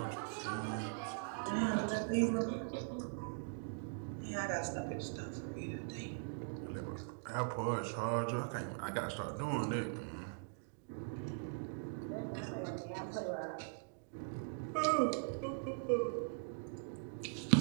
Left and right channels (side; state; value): left; silent; digital silence